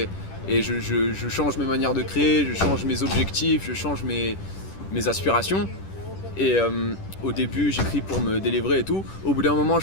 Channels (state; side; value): late; right; 10 ms